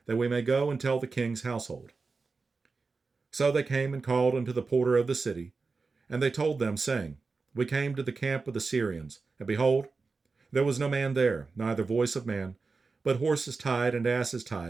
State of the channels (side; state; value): left; quieter; 4.3 dB